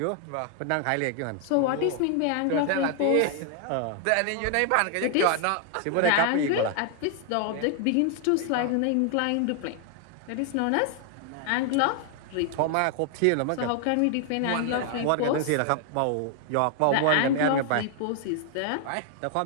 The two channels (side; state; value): both; different; correlation 0.00